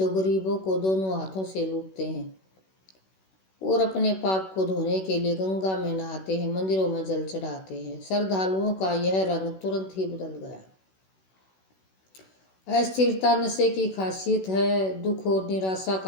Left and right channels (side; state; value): right; late; 16 ms